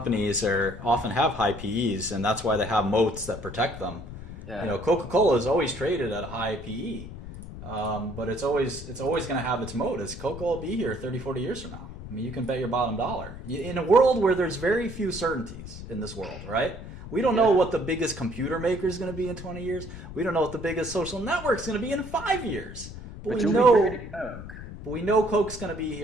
often have high PEs, and that's why they have moats that protect them. Yeah. You know, Coca-Cola is always traded at a high PE, but it's always going to have its moat. Is Coca-Cola will be here 30, 40 years from now? I mean, you can bet your bottom dollar. In a world where there's very few certainties in this world, right? We don't know what the biggest computer maker is going to be in 20 years. We don't know what the biggest social network is going to be in 5 years. But we know Coke's going to be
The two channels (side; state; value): left; noise; rumble, 12 dB below the sound